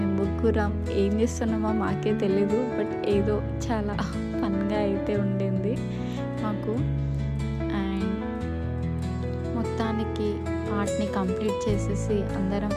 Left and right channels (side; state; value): both; identical; correlation 1.00